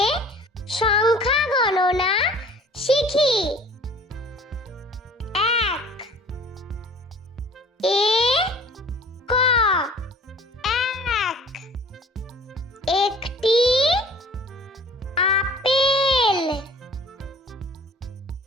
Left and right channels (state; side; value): normal; both; correlation 0.48